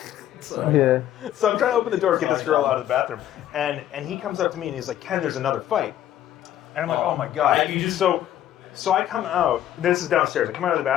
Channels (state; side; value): quieter; right; 11.9 dB